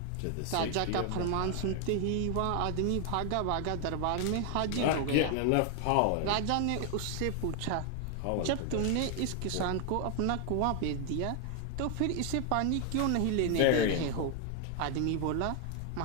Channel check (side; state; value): both; different; correlation 0.00